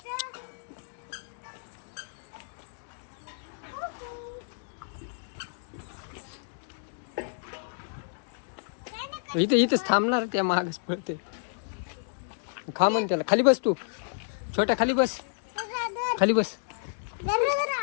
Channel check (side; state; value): right; silent; digital silence